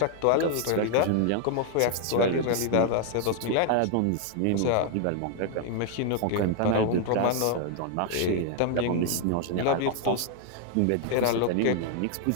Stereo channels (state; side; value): different; both; correlation 0.00